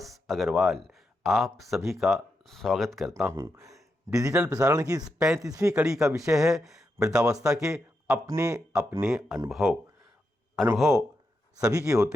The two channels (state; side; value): normal; both; correlation 0.85